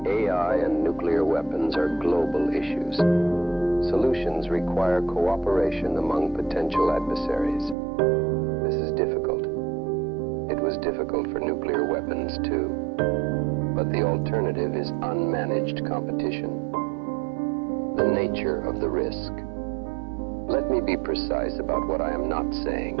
AI and nuclear weapons are global issues. Solutions require cooperation among potential adversaries. This is difficult. It was difficult for nuclear weapons too. But the alternative is unmanaged competition. The nature of the risk. Let me be precise about what I am not saying.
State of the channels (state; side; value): drops out; left; at 7.8 s